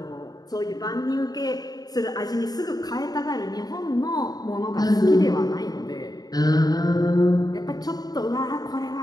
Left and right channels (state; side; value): late; right; 0.19 ms